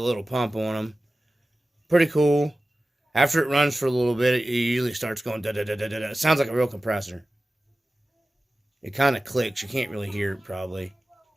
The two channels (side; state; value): both; normal; correlation 0.95